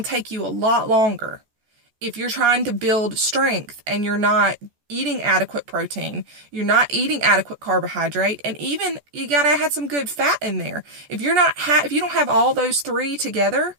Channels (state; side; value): late; left; 14 ms